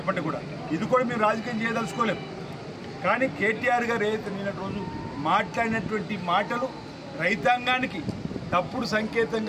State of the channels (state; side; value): identical; both; correlation 1.00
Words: కూడా, ఇది కూడా మేము రాజకీయం చేయదలుచుకోలేము. కానీ కేటీఆర్ గారు ఏదైతే నిన్నటి రోజు మాట్లాడినటువంటి మాటలు రైతాంగానికి తప్పుడు